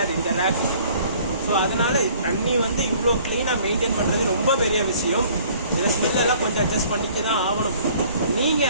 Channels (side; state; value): both; inverted; correlation -0.54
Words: இந்த ரேக்கு. ஸோ அதனால தண்ணி வந்து இவ்வளோ க்ளீனாக மெயின்டைன் பண்ணுறது ரொம்ப பெரிய விஷயம். இதில் ஸ்மெல்லெல்லாம் கொஞ்சம் அட்ஜஸ்ட் பண்ணிக்க தான் ஆகணும்.